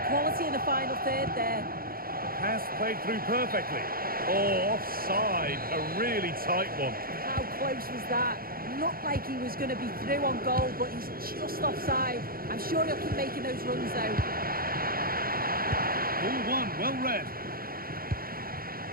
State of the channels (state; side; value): late; left; 0.43 ms